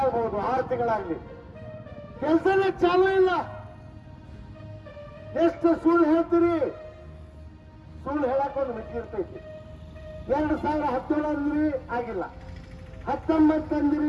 ಆಗ್ಬಹುದು, 6 ತಿಂಗಳಾಗ್ಲಿ, ಕೆಲಸನೇ ಚಾಲು ಇಲ್ಲ. ಎಷ್ಟು ಸುಳ್ಳು ಹೇಳ್ತೀರಿ? ಸುಳ್ಳು ಹೇಳಕ್ ಒಂದು ಮಿತಿ ಇರ್ತೈತಿ. 2017 ಅಂದ್ರಿ ಆಗಿಲ್ಲ, 19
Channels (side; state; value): both; identical; correlation 1.00